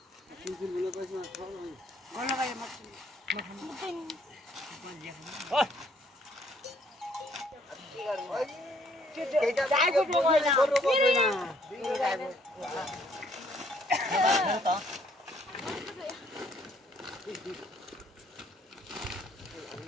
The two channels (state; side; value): normal; both; correlation 0.65